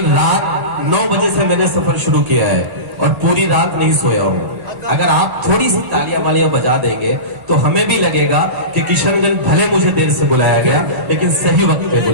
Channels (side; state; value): left; late; 1.9 ms